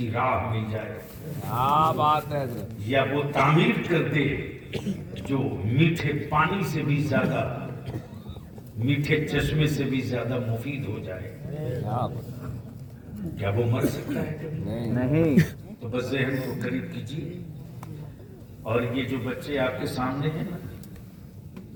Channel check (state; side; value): identical; both; correlation 1.00